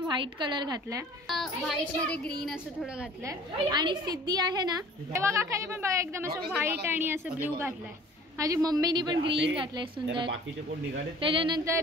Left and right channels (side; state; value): both; normal; correlation 0.48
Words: कलर घातलाय। व्हाईट मध्ये ग्रीन असं थोडं घातलंय आणि सिद्धी आहे ना तेव्हा काकाने पण बघा एकदम असं व्हाईट आणि असं ब्ल्यू घातलंय। माझी मम्मीनी पण ग्रीन घातलंय सुंदर।